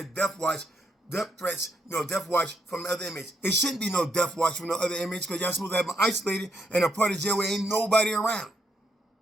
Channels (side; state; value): both; normal; correlation 0.77